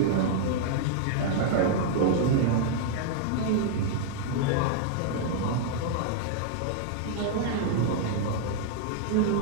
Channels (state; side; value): different; both; correlation -0.01